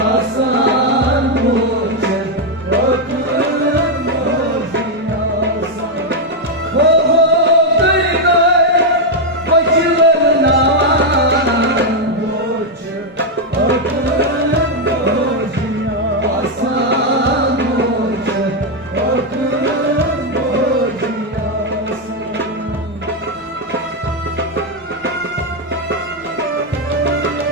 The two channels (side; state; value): both; normal; correlation 0.01